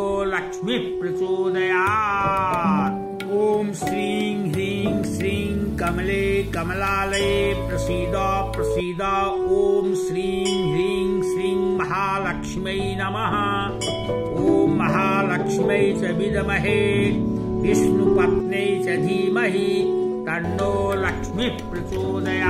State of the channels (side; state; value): both; identical; correlation 1.00